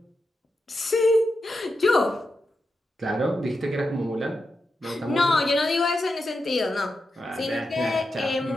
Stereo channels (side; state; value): both; normal; correlation 0.88